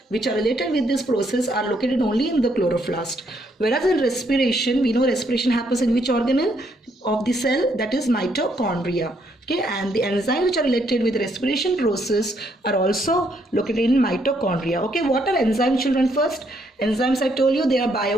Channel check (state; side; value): normal; both; correlation 0.72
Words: which are related with this process are located only in the chloroplast. Whereas in respiration, we know respiration happens in which organelle of the cell? That is mitochondria. Okay, and the enzymes which are related with the respiration process are also located in mitochondria. Okay, what are enzymes, children? First, enzymes, I told you, they are